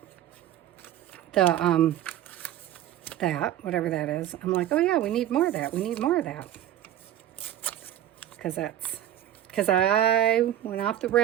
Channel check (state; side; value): quieter; left; 12.0 dB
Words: whatever that is, I'm like, oh yeah, we need more of that. We need more of that. Because I went off the